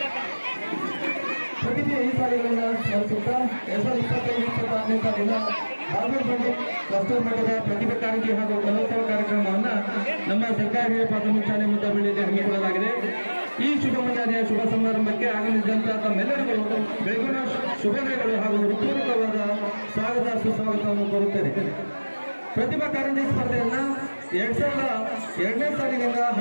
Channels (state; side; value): inverted; both; correlation -1.00